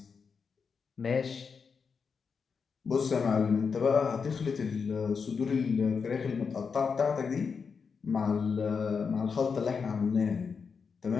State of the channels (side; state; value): right; quieter; 5.7 dB